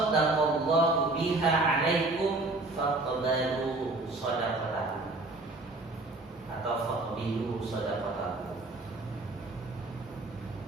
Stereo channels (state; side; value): quieter; left; 3.0 dB